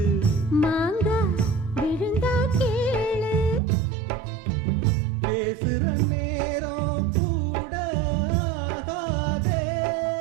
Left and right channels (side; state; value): left; drops out; at 3.6 s